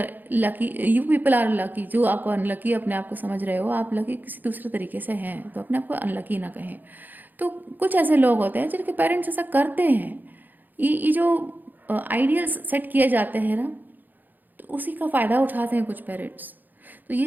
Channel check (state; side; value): late; left; 0.086 ms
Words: lucky, you people are lucky. जो आपको अनलकी अपने आप को समझ रहे हो, आप लकी किसी दूसरे तरीके से हैं, तो अपने आप को अनलकी ना कहें। तो कुछ ऐसे लोग होते हैं जिनके पेरेंट्स ऐसा करते हैं। ये जो आइडियल्स सेट किए जाते हैं ना, तो उसी का फ़ायदा उठाते हैं कुछ पेरेंट्स। तो ये